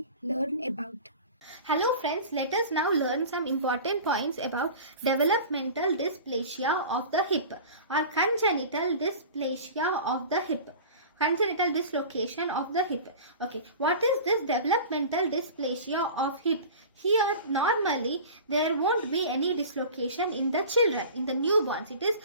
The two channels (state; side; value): inverted; both; correlation -0.37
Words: learn about. Hello friends, let us now learn some important points about developmental dysplasia of the hip or congenital dysplasia of the hip. Congenital dislocation of the hip. Okay, what is this developmental dysplasia of hip? Here normally there won't be any dislocation in the children, in the newborns. It is,